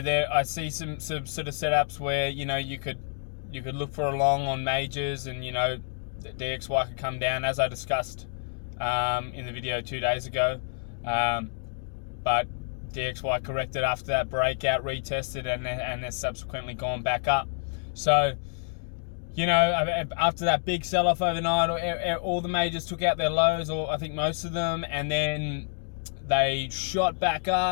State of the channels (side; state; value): right; silent; digital silence